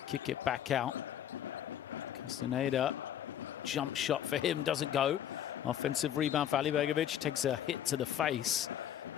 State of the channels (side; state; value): right; quieter; 10.4 dB